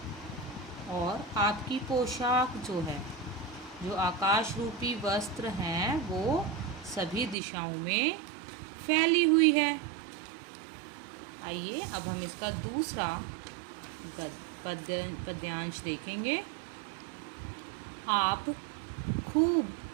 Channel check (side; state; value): left; drops out; at 7.4 s